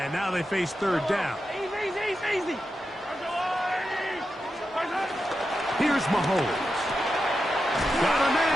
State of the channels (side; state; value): both; normal; correlation 0.89